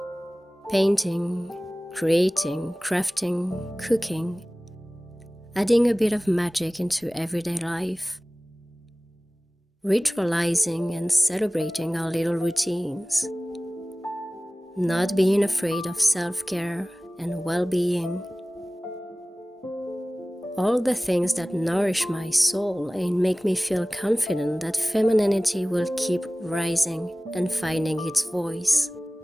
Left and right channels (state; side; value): normal; both; correlation 0.98